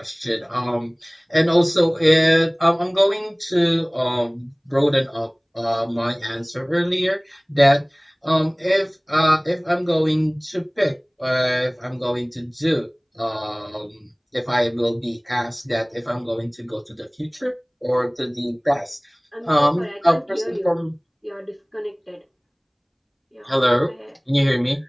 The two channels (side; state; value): both; identical; correlation 1.00